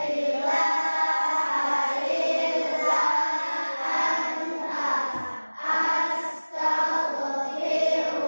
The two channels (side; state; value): both; inverted; correlation -1.00